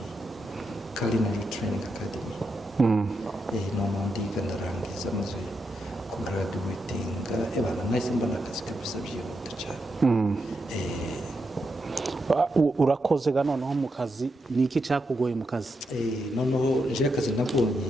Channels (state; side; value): normal; both; correlation 0.84